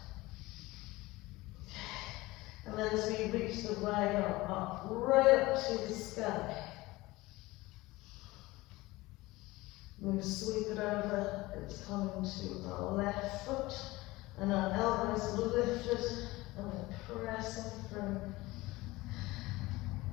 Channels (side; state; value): right; quieter; 20.1 dB